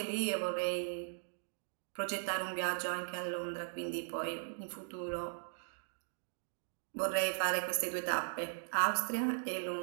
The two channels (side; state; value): left; silent; digital silence